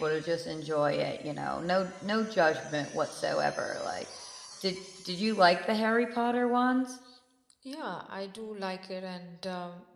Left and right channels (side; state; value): both; identical; correlation 1.00